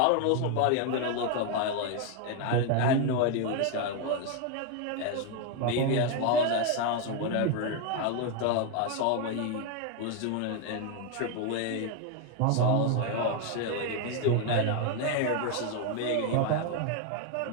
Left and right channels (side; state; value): both; different; correlation 0.01